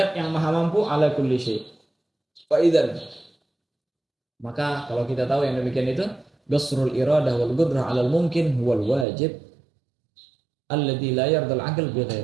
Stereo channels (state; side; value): drops out; left; at 9.1 s